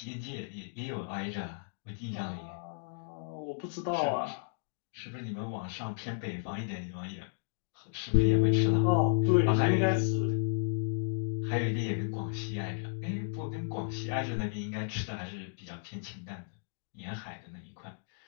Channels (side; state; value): right; silent; digital silence